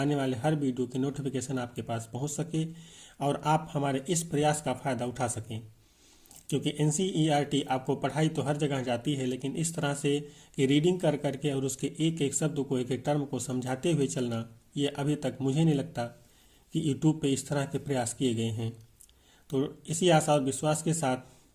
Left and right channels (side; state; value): both; identical; correlation 1.00